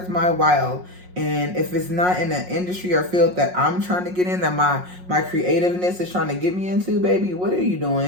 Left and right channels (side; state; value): left; late; 5.5 ms